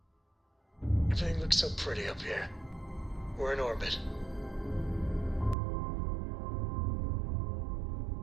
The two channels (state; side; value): drops out; left; at 5.6 s